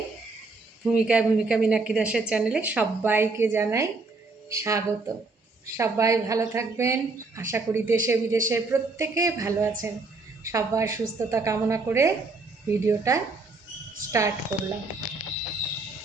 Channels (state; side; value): quieter; left; 3.6 dB